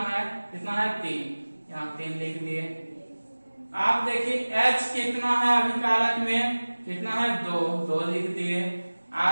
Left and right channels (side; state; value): both; inverted; correlation -1.00